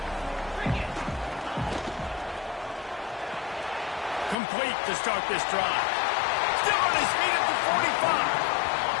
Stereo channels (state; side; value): drops out; right; at 4.4 s